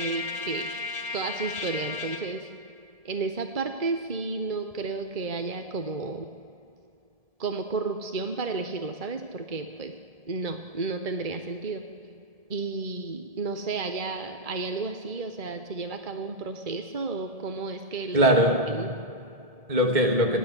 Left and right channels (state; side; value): late; left; 1.7 ms